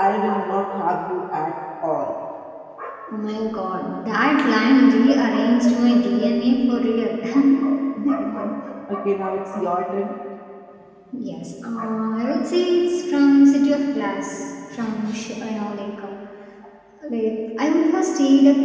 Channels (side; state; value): both; identical; correlation 1.00